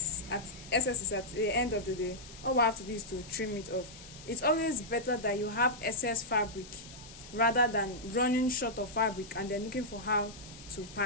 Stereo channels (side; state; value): left; noise; hiss, 17 dB below the sound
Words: at the end of the day, all we have to do is to trim it off. It's always better that you have excess fabric rather than running short of fabric and then looking for how to